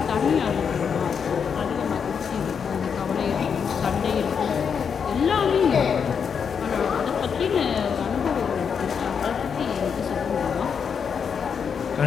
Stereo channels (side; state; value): right; quieter; 6.7 dB